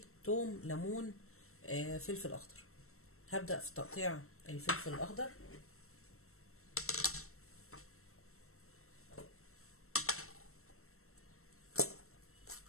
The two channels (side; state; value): right; late; 0.63 ms